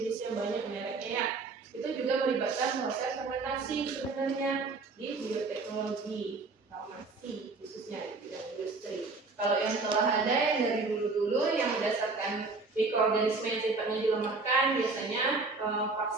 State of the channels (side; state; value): left; quieter; 3.9 dB